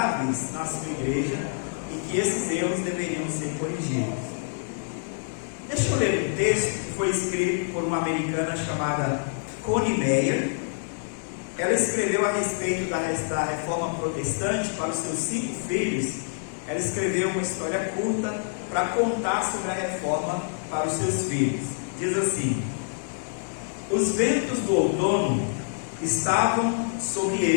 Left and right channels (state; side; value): silent; right; digital silence